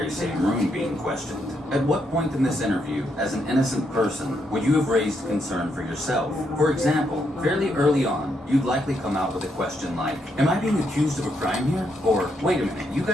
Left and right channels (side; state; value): both; normal; correlation 0.78